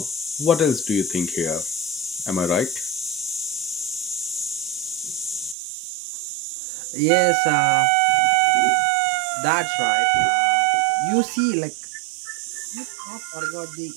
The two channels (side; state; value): left; drops out; at 5.6 s